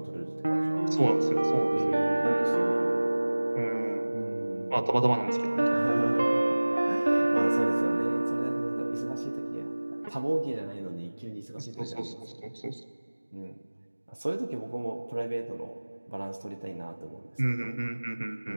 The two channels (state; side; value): inverted; both; correlation -1.00